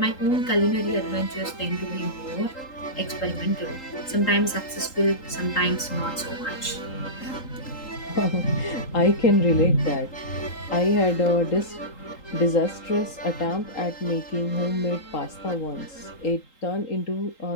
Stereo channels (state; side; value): late; right; 3.8 ms